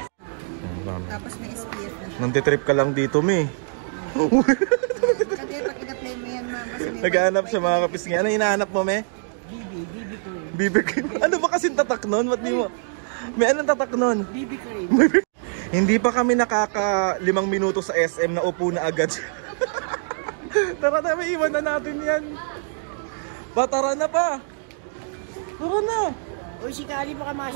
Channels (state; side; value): silent; left; digital silence